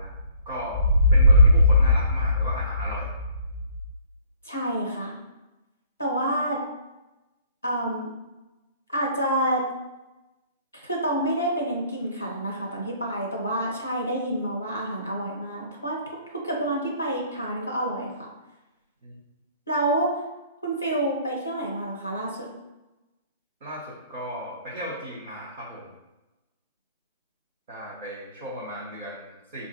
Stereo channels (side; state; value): both; inverted; correlation -0.57